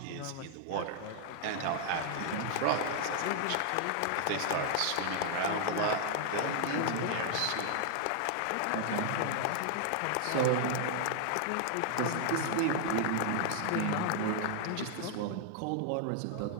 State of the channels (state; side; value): different; both; correlation 0.00